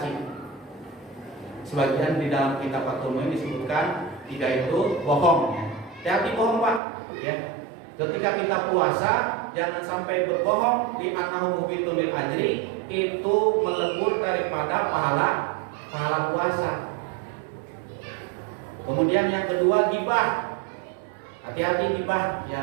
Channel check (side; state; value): left; drops out; at 6.8 s